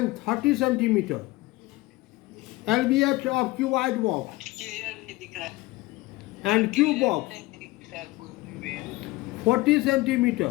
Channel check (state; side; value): quieter; right; 20.2 dB